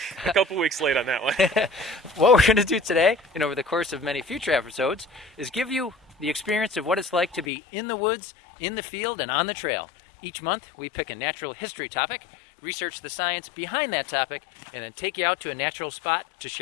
a couple weeks late on that one. What we're going to do today, and over the course of many future episodes, is give you the experience of what it's like to be in the woods, in the field, and on the trail. Each month, we pick a natural history topic, research the science behind that topic, and then take you out to a natural spot to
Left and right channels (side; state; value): right; drops out; at 7.5 s